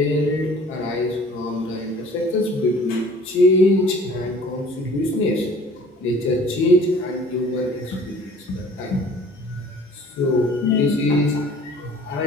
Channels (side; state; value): both; normal; correlation 0.50